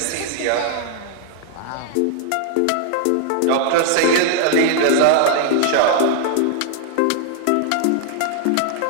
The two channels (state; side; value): different; both; correlation 0.00